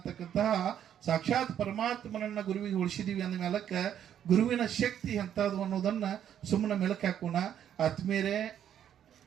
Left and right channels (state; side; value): quieter; left; 9.8 dB